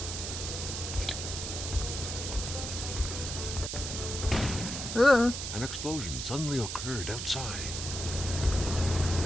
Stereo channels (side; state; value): right; noise; hiss, 5 dB below the sound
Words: Ugh. An explosion suddenly occurred outside.